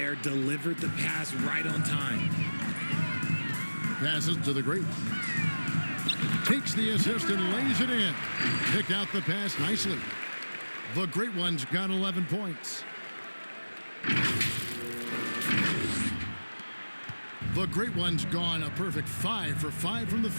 Delivered the pass right on time. Passes to the great. Takes the assist and lays it in. Picked out the pass nicely. The great one's got 11 points. The great one's gone a perfect 5 for 5 from the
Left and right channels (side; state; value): both; inverted; correlation -1.00